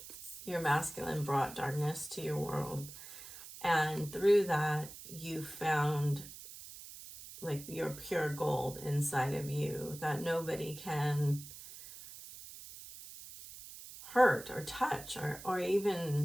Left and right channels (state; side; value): noise; right; hiss, 14 dB below the sound